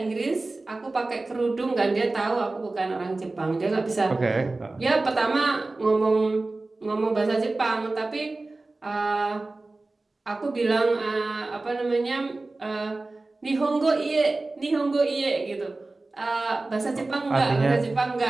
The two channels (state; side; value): quieter; left; 3.2 dB